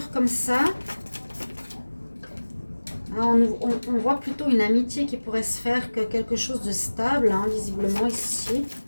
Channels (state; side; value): inverted; both; correlation -1.00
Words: comme ça. On voit plutôt une amitié qui pourrait se faire que quelque chose de stable, hein, visiblement ici.